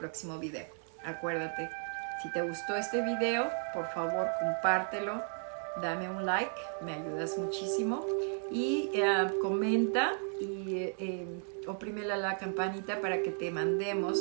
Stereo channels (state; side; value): silent; left; 55 dB below the other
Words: video. Acuérdate, si te gustó este video, por favor compártelo, dame un like, me ayudas muchísimo, y comenta y oprime la campanita para que te